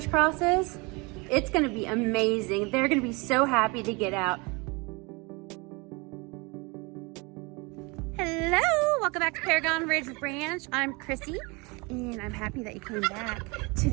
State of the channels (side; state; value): left; quieter; 27.8 dB